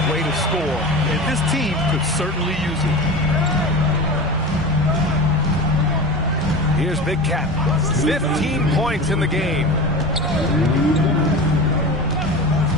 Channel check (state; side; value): normal; both; correlation 0.30